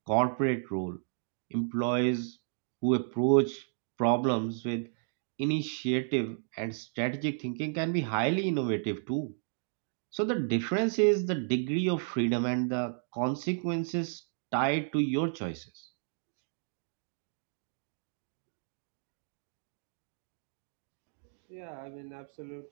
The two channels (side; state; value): left; silent; digital silence